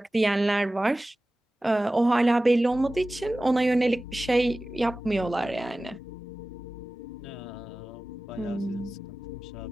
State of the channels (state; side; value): normal; both; correlation 0.96